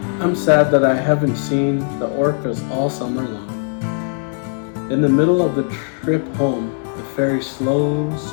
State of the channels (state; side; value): silent; right; digital silence